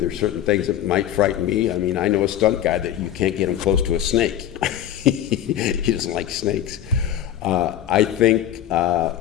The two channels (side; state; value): right; quieter; 11.1 dB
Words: certain things that might frighten me. I mean, I know a stunt guy that you can't get him close to a snake. He doesn't like snakes. I think